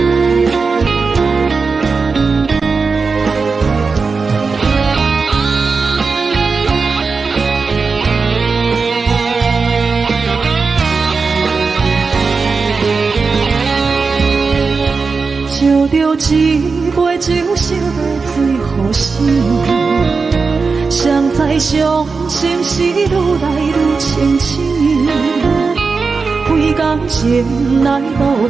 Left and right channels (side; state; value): left; quieter; 4.6 dB